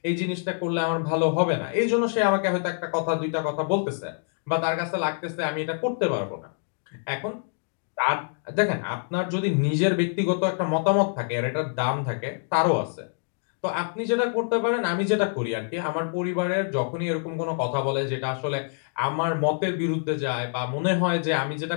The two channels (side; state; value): right; silent; digital silence